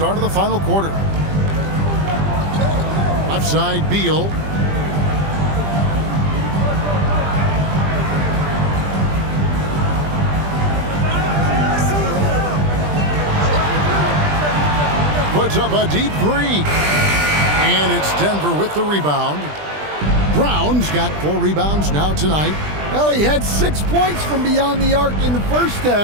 of the final quarter. Left side, Beal. Puts up a deep 3. And it's Denver with the rebound. Brown's got 4 rebounds now tonight. Well, he had 6 points from beyond the arc in the first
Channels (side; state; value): left; late; 20 ms